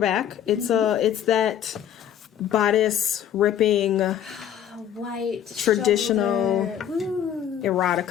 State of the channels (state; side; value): quieter; right; 9.8 dB